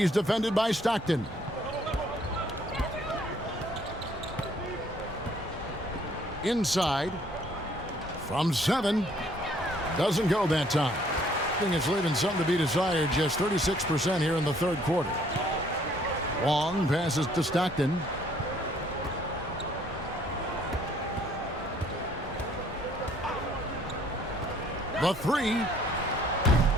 defended by Stockton. Inside. From 7. Doesn't go that time. I think it's leaving something to be desired. Just 36% here in the third quarter. Wong passes to Stockton. The 3.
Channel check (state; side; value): normal; both; correlation 0.62